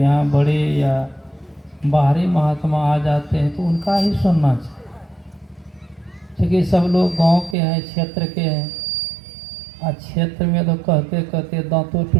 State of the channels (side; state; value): left; drops out; at 7.6 s